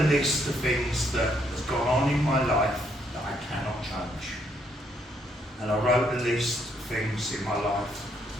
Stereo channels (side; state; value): both; normal; correlation 0.72